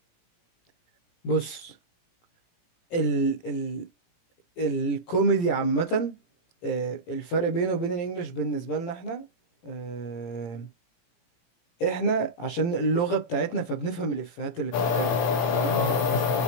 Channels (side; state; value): right; late; 17 ms